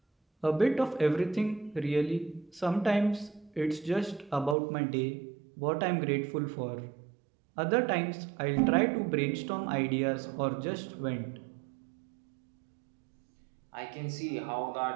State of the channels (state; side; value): drops out; left; at 4.5 s